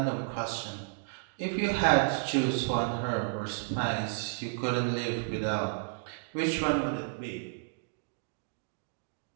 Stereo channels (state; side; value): silent; left; digital silence